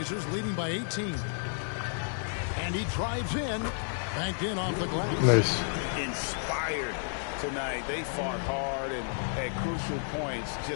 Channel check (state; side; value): silent; right; digital silence